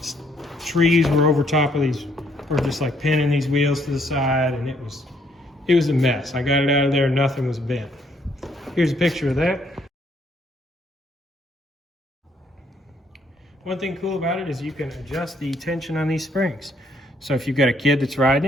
trees were over top of these, or just like pinning these wheels to the side, and it was a mess. I got it out of there, nothing was bent. Here's a picture of that. One thing cool about it is you can adjust the tension on these springs. So if you've got a kid that's riding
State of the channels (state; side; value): normal; both; correlation 0.68